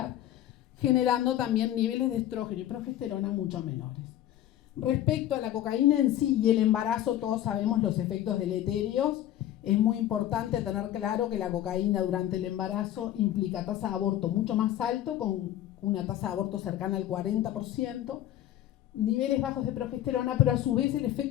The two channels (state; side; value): quieter; right; 12.5 dB